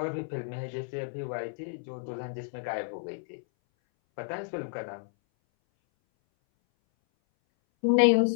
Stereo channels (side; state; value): right; silent; 58 dB below the other